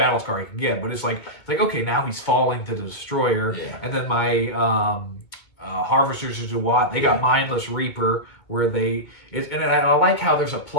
scar he can get. But it's like okay, now he's falling to the Destroyer, and then my Harvesters of Duat, they got Mindless Reaper, where and I like how there's a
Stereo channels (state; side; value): late; right; 2.2 ms